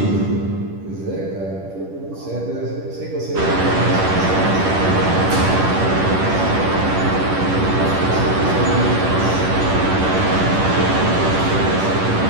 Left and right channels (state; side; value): late; left; 10 ms